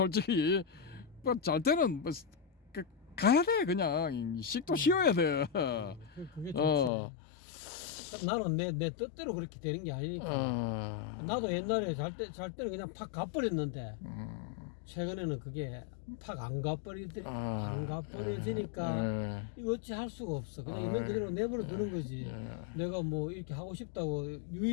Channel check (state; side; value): drops out; right; at 6.9 s